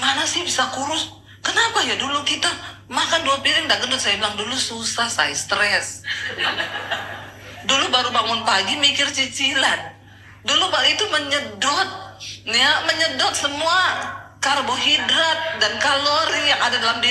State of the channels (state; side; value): identical; both; correlation 1.00